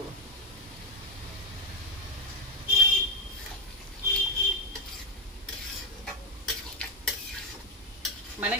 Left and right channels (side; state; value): both; normal; correlation 0.08